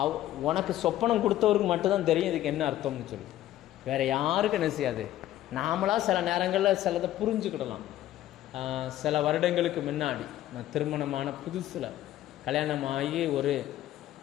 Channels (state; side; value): quieter; right; 13.6 dB